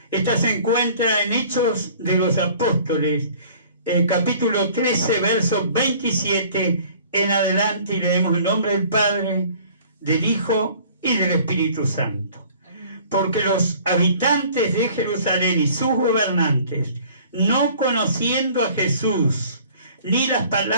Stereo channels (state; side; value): inverted; both; correlation -0.51